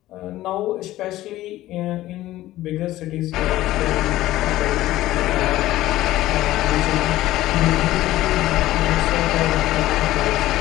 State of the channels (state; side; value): quieter; right; 15.5 dB